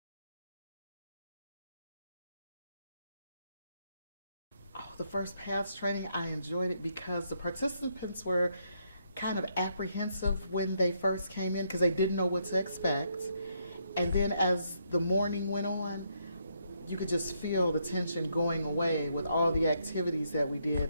The first PATH training, I enjoyed it because the participants were kind of apprehensive when they first came in because they didn't know what to expect. And then as the morning went on, you could just feel the tension going away with all the activities that we did.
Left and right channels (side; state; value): both; inverted; correlation -0.75